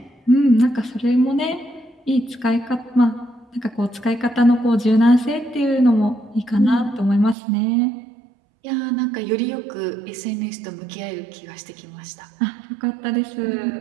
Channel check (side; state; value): left; drops out; at 7.4 s